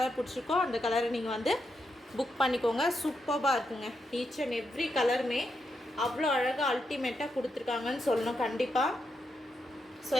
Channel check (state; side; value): normal; both; correlation 0.83